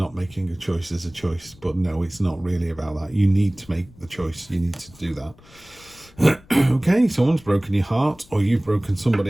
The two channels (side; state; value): left; noise; rumble, 25 dB below the sound